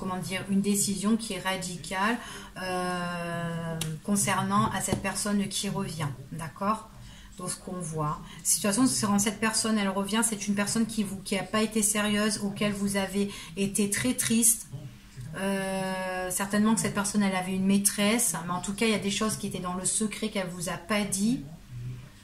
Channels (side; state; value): both; identical; correlation 1.00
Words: dire, une décision qui est radicale concernant à cette personne qui revient. D'accord? Donc ce qu'on voit. De toute façon, quand cette personne elle revient, c'est une personne qui n'a pas été sérieuse, auquel vous avez été très triste. Certainement que cette personne elle avait une maîtresse, mais en tout cas il y a des choses qui étaient dans le secret qu'elle vous a pas dit.